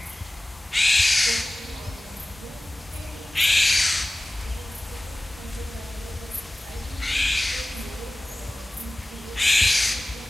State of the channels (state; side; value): normal; both; correlation 0.98